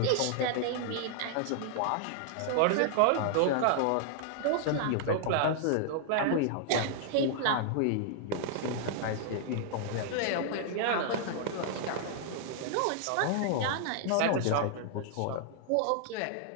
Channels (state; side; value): different; both; correlation -0.01